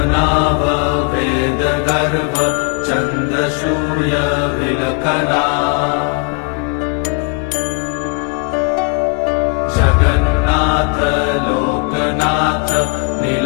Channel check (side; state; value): right; quieter; 31.0 dB